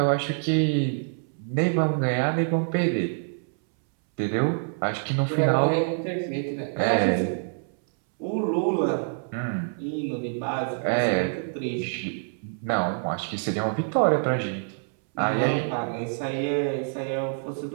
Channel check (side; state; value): left; silent; 61 dB below the other